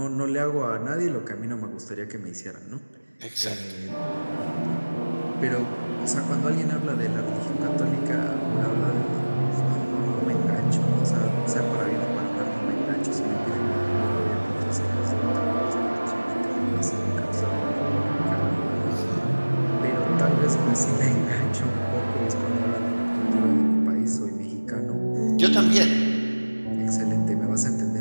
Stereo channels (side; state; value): both; inverted; correlation -1.00